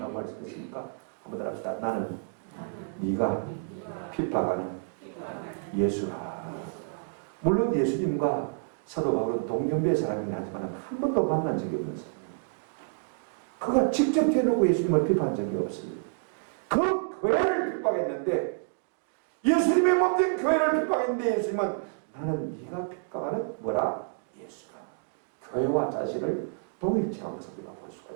말씀하십니까? 한번 더 합시다. 나는 네가 핍박하는 예수라. 물론 예수님과 사도 바울은 동년배의 사람이긴 하지만 한 번도 만난 적이 없는 사람입니다. 그가 직접 대놓고 예수님을 비판한 적이 없습니다. 그 교회를 핍박했는데, 예수님의 몸된 교회를 핍박했는데 예수님은 나는 네가 핍박하는 뭐라? 예수라. 교회와 자신을 동일체한 것을 우리가 볼 수가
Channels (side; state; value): left; silent; digital silence